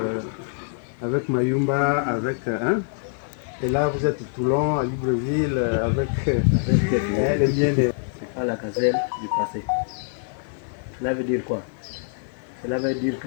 avec Mayumba, avec et là vous êtes Toulon, à Libreville avec les liens de... C'est pas la gazelle du passé. Cela veut dire quoi? Cela veut dire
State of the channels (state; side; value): silent; right; 56 dB below the other